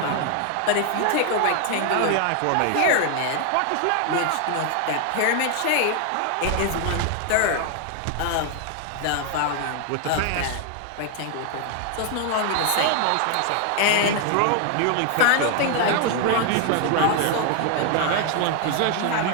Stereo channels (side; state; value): both; different; correlation 0.00